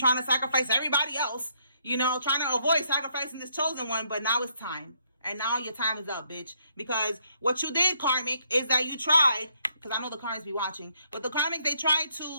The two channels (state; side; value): inverted; both; correlation -0.72